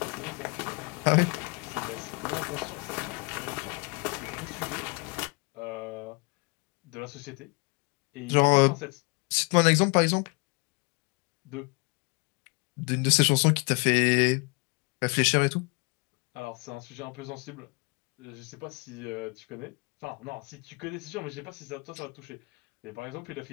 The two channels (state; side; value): quieter; right; 30.5 dB